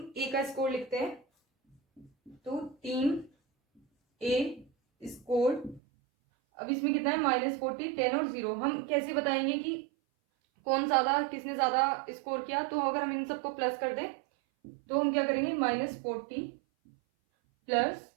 ए का स्कोर लिखते हैं, तो टीम ए स्कोर, अब इसमें कितना है -40, 10 और 0। हम कैसे बताएंगे कि कौन ज्यादा, किसने ज्यादा स्कोर किया, तो अगर हम इन सबको प्लस कर दें तो हम क्या करेंगे -40 प्लस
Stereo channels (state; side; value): drops out; left; at 5.8 s